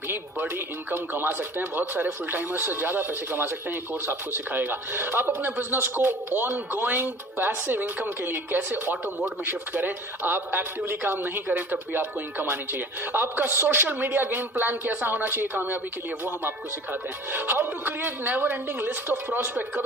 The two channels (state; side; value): normal; both; correlation 0.43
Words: बड़ी इनकम कमा सकते हैं, बहुत सारे फुल टाइमर्स से ज्यादा पैसे कमा सकते हैं, ये कोर्स आपको सिखाएगा। आप अपने बिजनेस को ऑन गोइंग पैसिव इनकम के लिए कैसे ऑटो मोड में शिफ्ट करें, आप एक्टिवली काम नहीं करें तब भी आपको इनकम आनी चाहिए। आपका सोशल मीडिया गेम प्लान कैसा होना चाहिए कामयाबी के लिए, वो हम आपको सिखाते हैं। How to create never ending list of prospect,